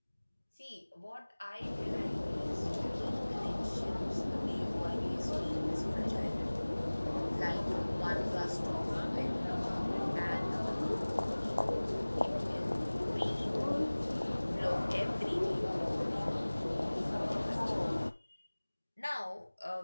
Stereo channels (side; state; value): both; inverted; correlation -1.00